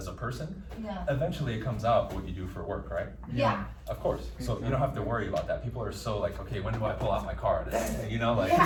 a person, eventually it comes out what you do for work, right? Yeah. Of course. So you don't have to worry about that. People are so like, okay, when do I pull out my card? You know, like,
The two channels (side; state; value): both; identical; correlation 1.00